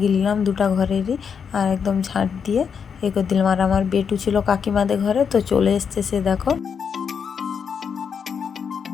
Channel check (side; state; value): right; quieter; 6.8 dB